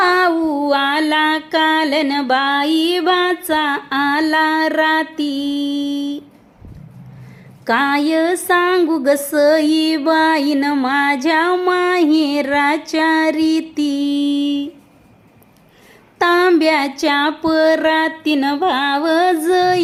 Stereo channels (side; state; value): both; identical; correlation 1.00